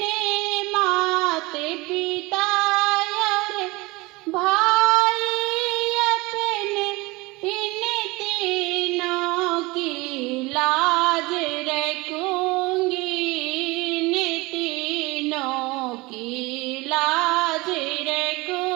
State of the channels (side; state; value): left; quieter; 23.3 dB